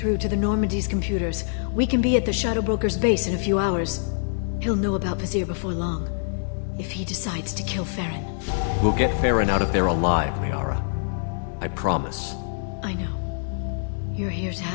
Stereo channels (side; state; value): right; silent; digital silence